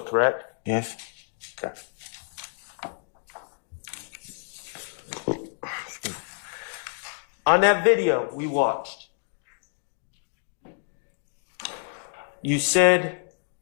correct? Yes. Okay. On that video we watched, you said,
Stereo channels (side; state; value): right; silent; 59 dB below the other